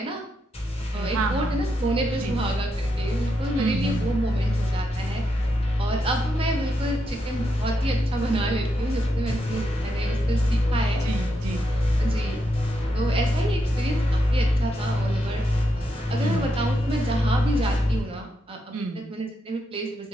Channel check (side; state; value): both; normal; correlation 0.82